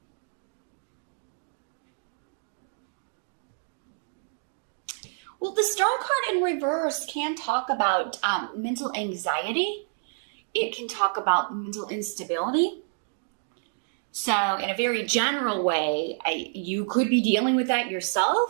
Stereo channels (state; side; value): silent; left; digital silence